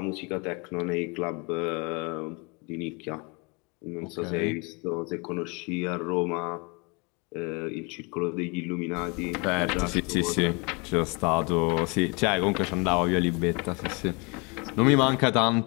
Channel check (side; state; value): right; quieter; 30.3 dB